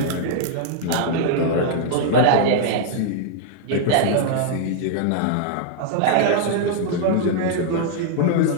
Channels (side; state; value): both; different; correlation -0.01